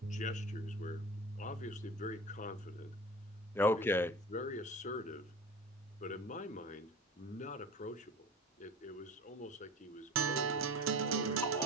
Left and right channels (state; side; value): normal; both; correlation 0.37